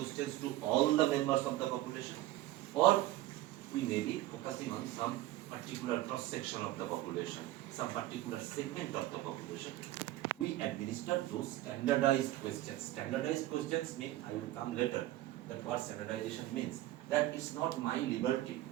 to all the members of the population, or we may be focusing on some particular cross-section of the population, some particular segment of the population. We administer those standardized questions. Standardized questions mean, I will come later, that what standardization means. That it's not my liberty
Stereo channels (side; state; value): left; quieter; 15.8 dB